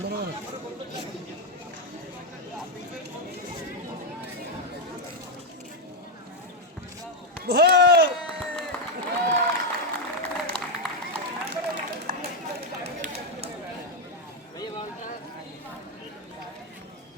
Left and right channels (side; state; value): both; normal; correlation 0.04